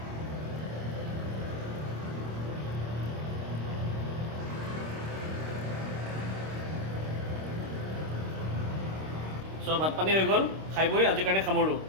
So ভাত পানী হৈ গ'ল, খাই বৈ আজিৰ কাৰণে সামৰোঁ।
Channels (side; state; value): left; late; 26 ms